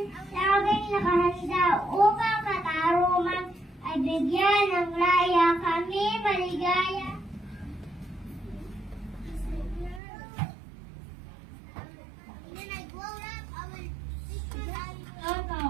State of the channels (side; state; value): left; drops out; at 10.0 s